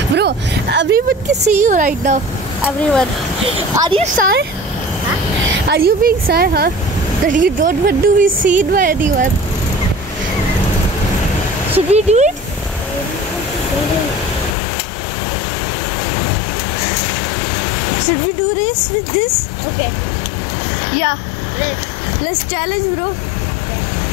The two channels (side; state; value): right; drops out; at 14.6 s